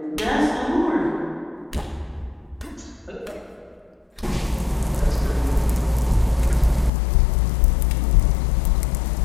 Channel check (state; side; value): drops out; right; at 6.9 s